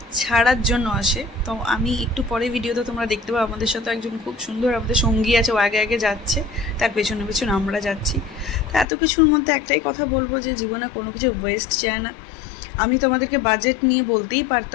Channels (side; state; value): right; drops out; at 8.8 s